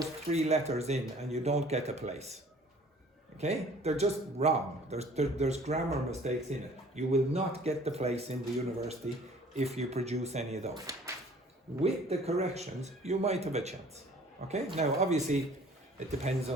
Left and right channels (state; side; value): normal; both; correlation 0.52